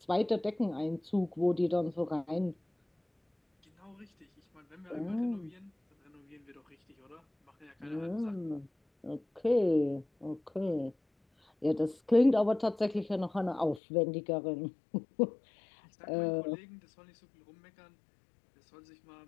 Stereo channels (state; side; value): drops out; right; at 13.8 s